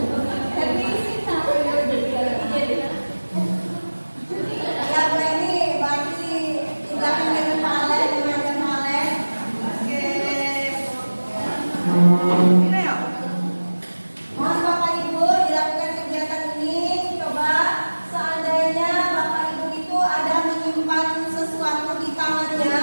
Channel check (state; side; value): inverted; both; correlation -1.00